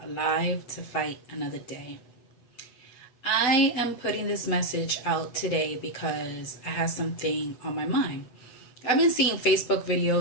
to fight another day. I am putting this message out today because I have something on my mind. I've been seeing Facebook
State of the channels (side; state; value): right; late; 8.0 ms